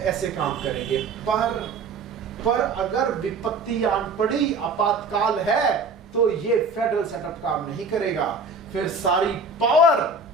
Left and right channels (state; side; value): quieter; left; 3.8 dB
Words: काम करेंगे, पर अगर विपत्ति आन पड़ी, आपातकाल है, तो ये फेडरल सेटअप काम नहीं करेगा। फिर सारी पावर